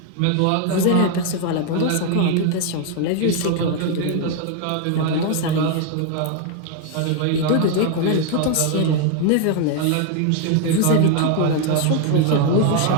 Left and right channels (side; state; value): both; different; correlation 0.01